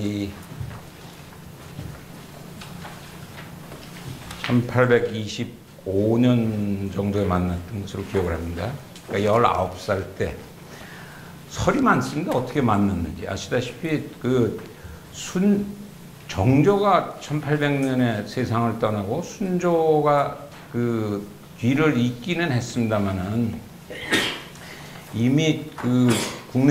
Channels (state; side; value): identical; both; correlation 1.00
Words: 1825년 정도에 만났던 것으로 기억을 합니다. 그러니까 19살 때 설이 많습니다. 어떻게 만났는지 아시다시피 정조가 1800년에 세상을 떠나고 순조가 뒤를 잇기는 했습니다만은 이미